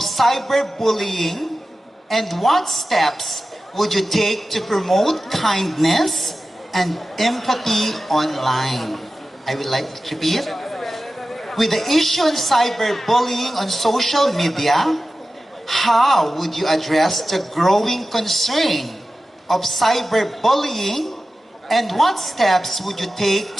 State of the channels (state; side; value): normal; both; correlation 0.94